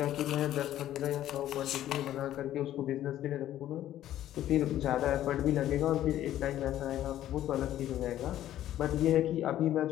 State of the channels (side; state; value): right; quieter; 12.6 dB